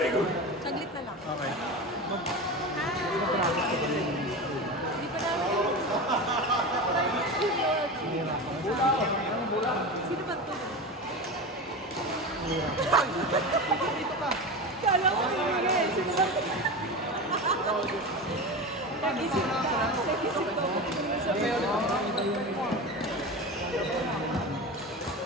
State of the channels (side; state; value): both; normal; correlation 0.25